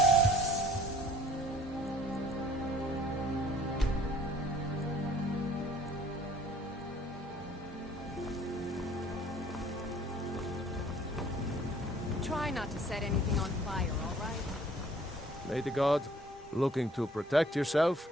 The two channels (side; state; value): both; normal; correlation 0.56